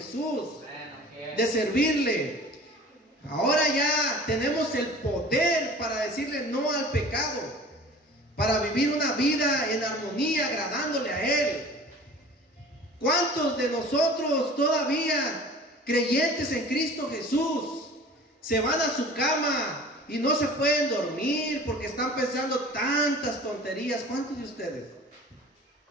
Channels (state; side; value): normal; both; correlation 0.43